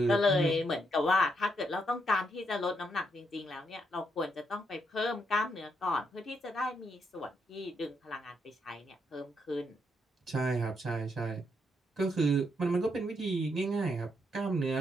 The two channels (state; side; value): normal; both; correlation 0.77